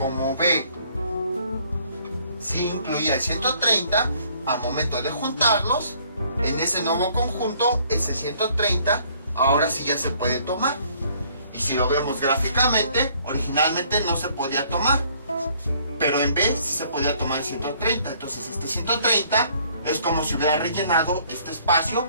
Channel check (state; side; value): inverted; both; correlation -0.61